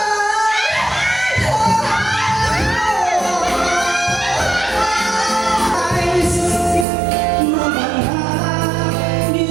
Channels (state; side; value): drops out; left; at 6.9 s